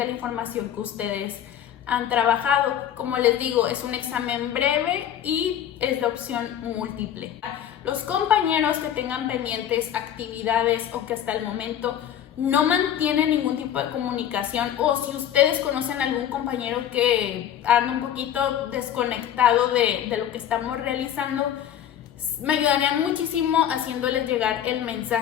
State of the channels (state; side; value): quieter; right; 10.3 dB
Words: información que ustedes han trabajado. Como les digo, es un examen breve y es de opción múltiple. Los compañeros que tengan pendientes actividades o que hasta el momento no mantienen ningún tipo de comunicación, o si ustedes conocen a algún compañero que anda un poquito desconectado de lo que estamos realizando, me ayudarían muchísimo haciéndoles llegar el